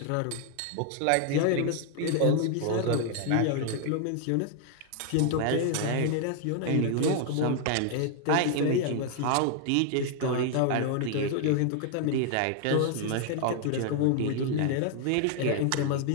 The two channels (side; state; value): both; different; correlation 0.00